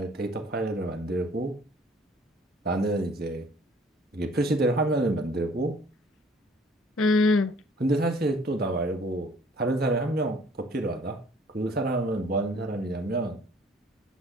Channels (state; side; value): normal; both; correlation 0.55